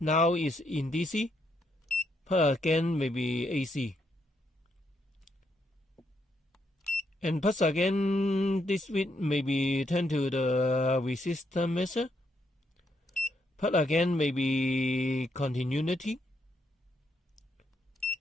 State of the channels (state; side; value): normal; both; correlation 0.77